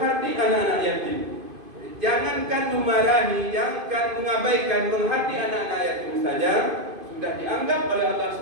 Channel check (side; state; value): left; late; 2.5 ms